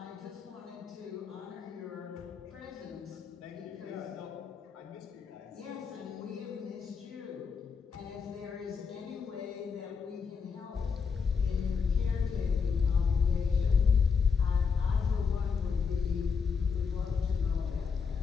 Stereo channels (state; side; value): quieter; right; 5.7 dB